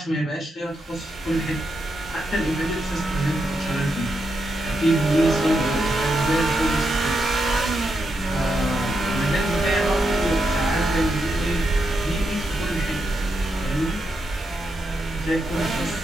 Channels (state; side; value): normal; both; correlation 0.83